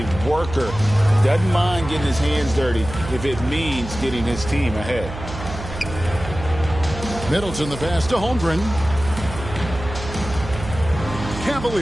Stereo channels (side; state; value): right; noise; hum, 10 dB below the sound